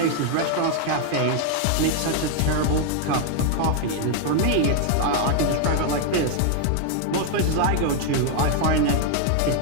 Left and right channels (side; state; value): both; different; correlation 0.00